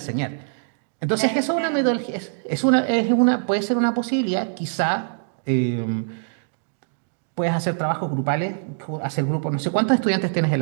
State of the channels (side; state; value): left; silent; digital silence